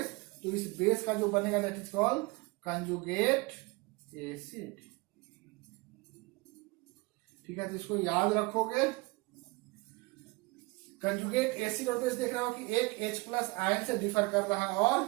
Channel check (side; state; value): left; quieter; 24.9 dB